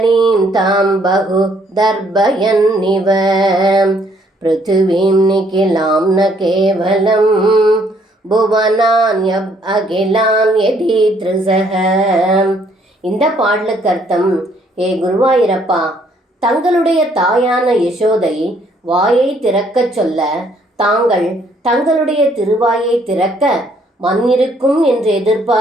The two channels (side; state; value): both; normal; correlation 0.66